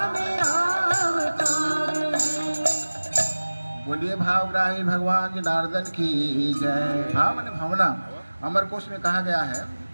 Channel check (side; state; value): both; inverted; correlation -1.00